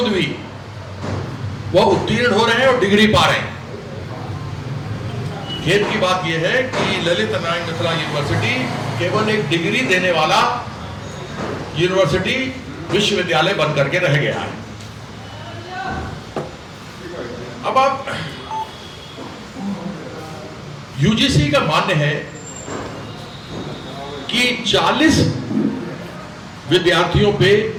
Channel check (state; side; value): identical; both; correlation 1.00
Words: भी वह उत्तीर्ण हो रहे हैं और डिग्री पा रहे हैं। खेद की बात यह है कि ललित नारायण मिथिला यूनिवर्सिटी केवल एक डिग्री देने वाला यूनिवर्सिटी विश्वविद्यालय बन करके रह गया है। अब आप यूजीसी का मानना है कि 40 विद्यार्थियों पे